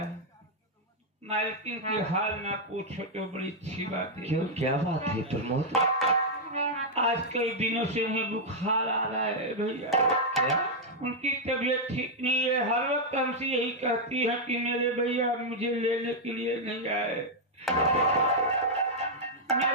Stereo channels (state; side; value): normal; both; correlation -0.03